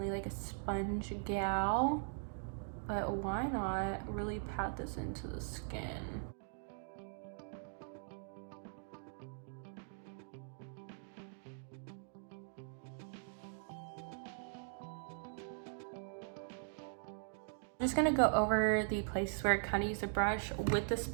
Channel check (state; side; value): silent; left; digital silence